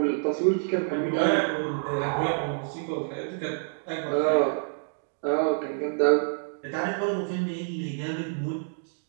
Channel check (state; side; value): silent; left; digital silence